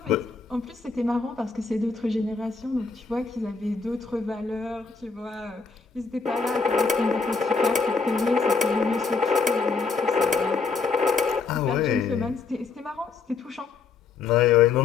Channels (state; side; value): quieter; right; 4.7 dB